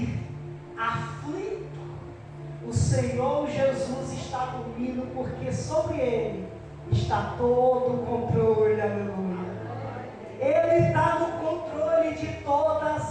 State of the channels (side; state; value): both; identical; correlation 1.00